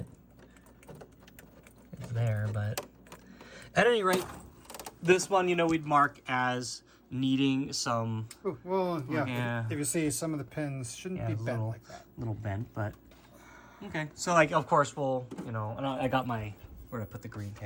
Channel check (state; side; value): identical; both; correlation 1.00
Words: there, but at any rate, this one, you know, we'd mark as needing some. Ooh, well, yeah. If you see, some of the pins shouldn't be bent like that. Little bent, but okay. So, like, of course, we'll, you know, and I got my, where to put the green